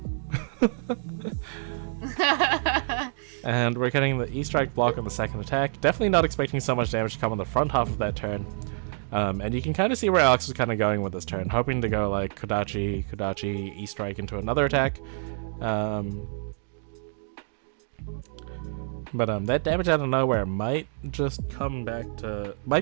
And we're getting the E-Strike block on the second attack. Definitely not expecting so much damage to come on the front half of that turn. And you can kind of see where Alex is kind of going with this turn, hoping to go like Kodachi, E-Strike into another attack. But that damage out of nowhere might just come back to...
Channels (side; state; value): left; silent; digital silence